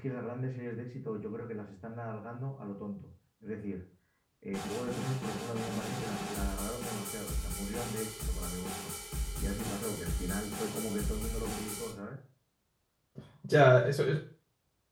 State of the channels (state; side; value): identical; both; correlation 1.00